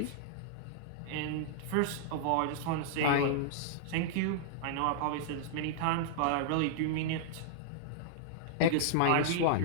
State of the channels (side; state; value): both; different; correlation -0.01